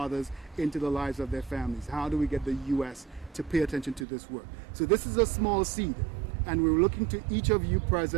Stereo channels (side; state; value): left; drops out; at 4.0 s